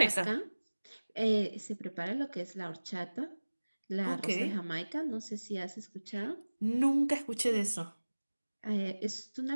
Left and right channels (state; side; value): inverted; both; correlation -1.00